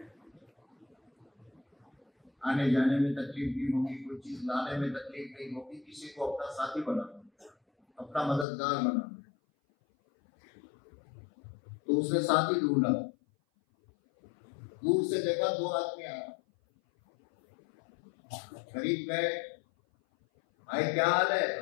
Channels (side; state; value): right; drops out; at 8.5 s